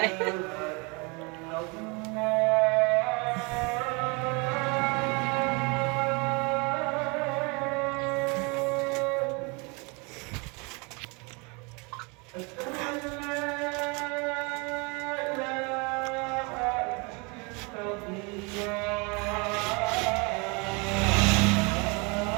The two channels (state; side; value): quieter; left; 30.1 dB